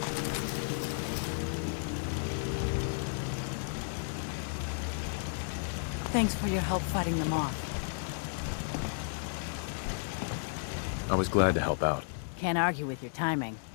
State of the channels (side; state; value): right; silent; digital silence